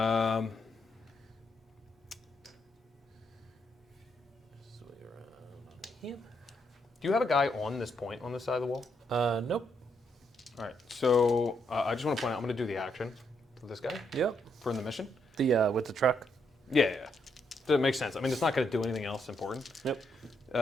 Swing around on him. Do you have a guy on this point on this side of the wall? Nope. All right. So I just want to point out, I'm going to do the action for this guy Yep. for in the mission. The with the truck. Yeah. That makes sense. I mean, it's not going to do anything else important.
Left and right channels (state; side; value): normal; both; correlation 0.77